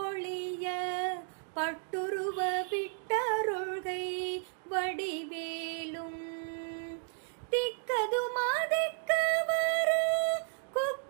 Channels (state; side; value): silent; left; 56 dB below the other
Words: பட்டுருவ விட்டருள்கை வடிவேலும். திக்கதுமா திக்கவரு